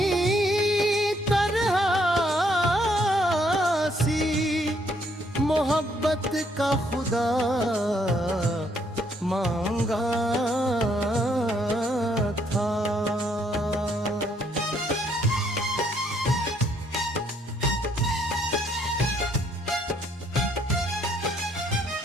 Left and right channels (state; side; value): normal; both; correlation 0.69